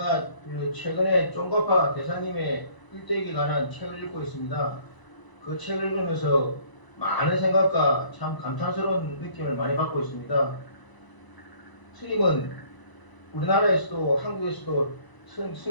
그 최근에 쫑가파 대사님의 일대기에 관한 책을 읽고 있습니다. 그 책을 읽으면서 많은 생각과 참 감탄스러운 느낌을 많이 받고 있습니다. 스님은 우리나라에서도 한국에서도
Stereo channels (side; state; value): right; late; 1.0 ms